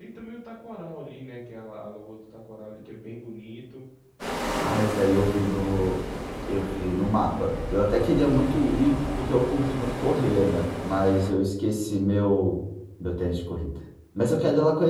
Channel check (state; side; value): identical; both; correlation 1.00